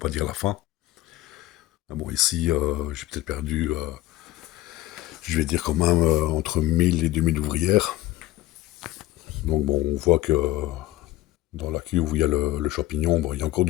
dire la fin. Ah bon, ici, j'ai peut-être perdu, je vais dire quand même, entre 1000 et 2000 ouvrières. Donc bon, on voit que dans la cuve où il y a le champignon, il y a encore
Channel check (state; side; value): quieter; right; 16.5 dB